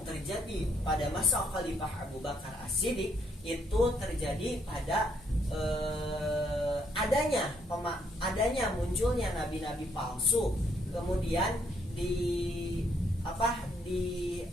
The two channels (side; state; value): both; normal; correlation 0.71